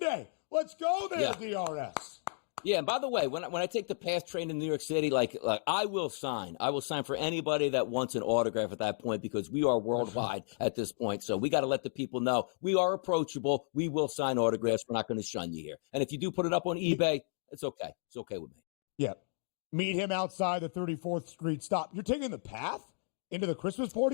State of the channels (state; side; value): silent; right; 56 dB below the other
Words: Let's go there, DRS. Yeah, and by the way, when I take the pass train in New York City, like I will sign for anybody that wants an autograph at that point, because we are worldwide at this point. So we got to let the people know we are approachable. We will sign autographs. We're not going to shun you here. And if you do put it up on eBay, it's okay. It's okay with me. Yeah. Meet him outside the 34th Street stop. You're taking the path into the Christmas